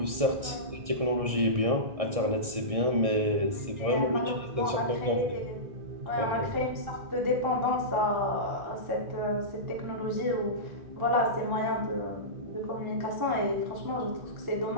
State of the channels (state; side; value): late; left; 1.6 ms